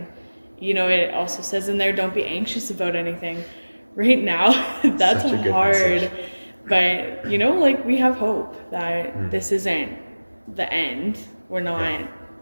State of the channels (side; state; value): both; inverted; correlation -1.00